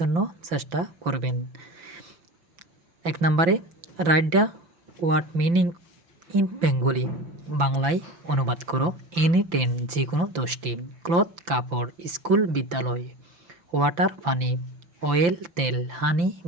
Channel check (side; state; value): left; late; 5.9 ms